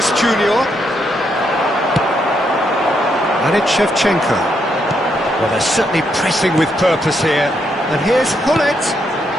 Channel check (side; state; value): both; normal; correlation 0.77